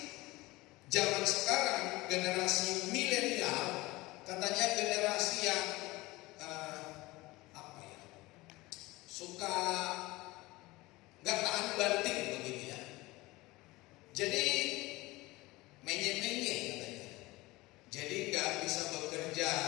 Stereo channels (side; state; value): right; quieter; 20.7 dB